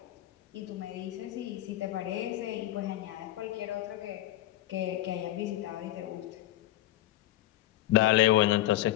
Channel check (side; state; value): right; quieter; 15.0 dB